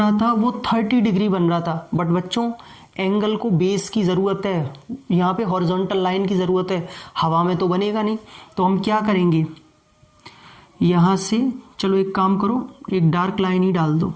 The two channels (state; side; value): identical; both; correlation 1.00